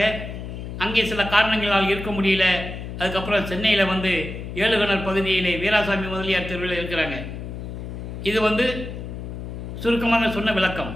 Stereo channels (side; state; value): left; noise; hum, 8 dB below the sound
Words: அங்கே சில காரணங்களால் இருக்க முடியல. அதுக்கப்புறம் சென்னையில் வந்து ஏழுகணர் பகுதியிலே வீராசாமி முதலியார் தெருவில் இருக்கிறாங்க. இது சுருக்கமாக சொன்ன விளக்கம்.